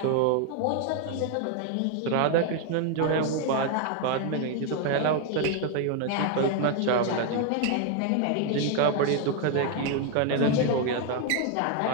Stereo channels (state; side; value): different; both; correlation 0.01